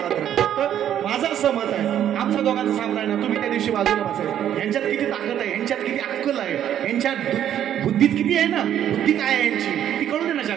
आहे. फक्त माझं असं मत आहे आमच्या दोघांचं सामना आहे ना तुम्ही त्या दिवशी बाजूला बसायचं. यांच्यात किती ताकद आहे यांच्यात किती अक्कल आहे यांच्यात बुद्धीत किती आहे ना. बुद्धी काय आहे यांची ती कळू दे ना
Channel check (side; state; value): left; quieter; 10.4 dB